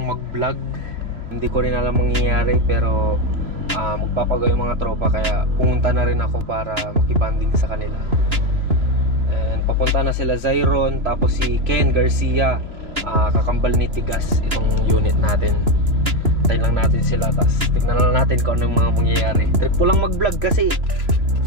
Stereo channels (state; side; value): late; left; 2.9 ms